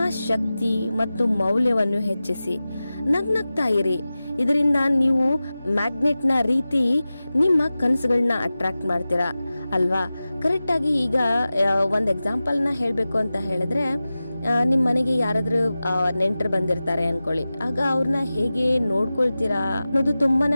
ಶಕ್ತಿ ಮತ್ತು ಮೌಲ್ಯವನ್ನು ಹೆಚ್ಚಿಸಿ. ನಗ್ನಗ್ತಾ ಇರಿ. ಇದರಿಂದ ನೀವು ಮ್ಯಾಗ್ನೆಟ್ನ ರೀತಿ ನಿಮ್ಮ ಕನಸುಗಳನ್ನ ಅಟ್ರಾಕ್ಟ್ ಮಾಡ್ತೀರಾ ಅಲ್ವಾ? ಕರೆಕ್ಟಾಗಿ ಈಗ ಒಂದು ಎಕ್ಸಾಂಪಲ್ನ ಹೇಳಬೇಕು ಅಂತ ಹೇಳಿದ್ರೆ, ನಿಮ್ಮ ಮನೆಗೆ ಯಾರಾದ್ರೂ ನೆಂಟರು ಬಂದಿರ್ತಾರೆ ಅನ್ಕೊಳ್ಳಿ. ಆಗ ಅವ್ರನ್ನ ಹೇಗೆ ನೋಡ್ಕೊಳ್ತೀರಾ ಅನ್ನೋದು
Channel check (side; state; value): both; inverted; correlation -0.96